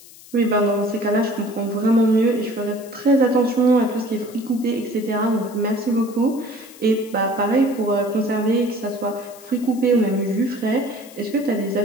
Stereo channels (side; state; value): left; noise; hiss, 21 dB below the sound